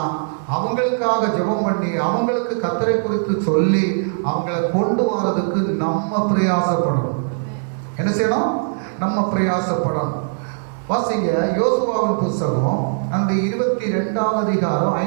அவங்களுக்காக ஜெபம் பண்ணி அவங்களுக்கு கர்த்தரை குறித்து சொல்லி அவங்கள கொண்டு வரதுக்கு நம்ம பிரயாசப்படணும். என்ன செய்யணும்? நம்ம பிரயாசப்படணும். வாசிங்க, யோசுவாவின் புஸ்தகம் அந்த 22ஆம் அதிகாரம்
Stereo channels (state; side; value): silent; left; 66 dB below the other